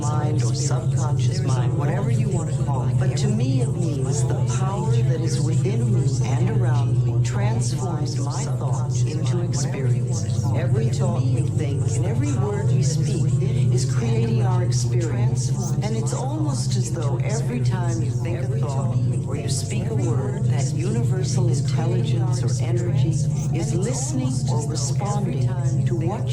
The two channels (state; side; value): identical; both; correlation 1.00